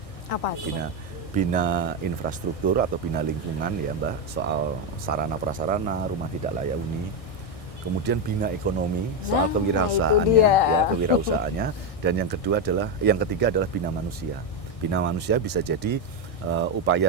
Apa itu? Bina infrastruktur atau bina lingkungan ya Mbak, soal sarana prasarana, rumah tidak layak huni. Kemudian bina ekonomi, soal kewirausahaannya, dan yang ketiga adalah bina manusia. Bina manusia bisa jadi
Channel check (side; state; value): right; late; 1.6 ms